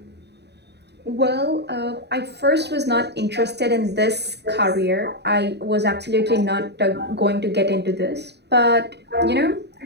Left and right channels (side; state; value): left; late; 0.49 ms